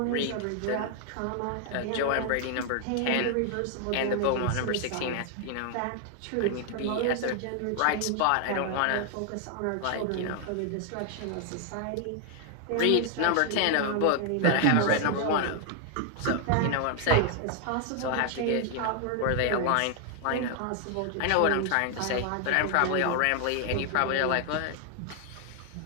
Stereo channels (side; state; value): both; different; correlation 0.00